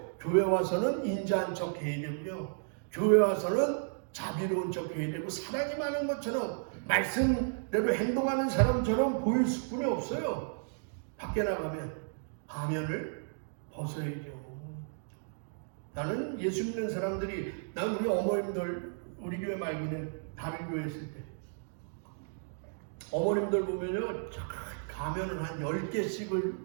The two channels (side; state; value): left; silent; digital silence